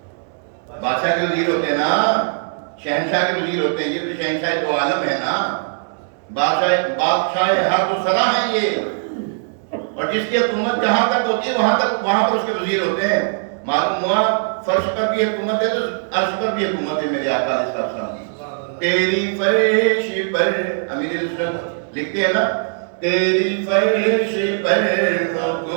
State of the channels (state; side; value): silent; left; 66 dB below the other